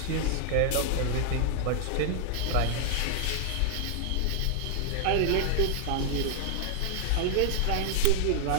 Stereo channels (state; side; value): different; both; correlation 0.00